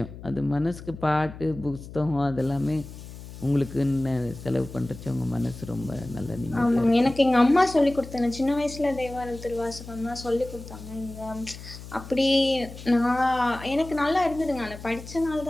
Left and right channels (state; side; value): noise; left; hum, 14 dB below the sound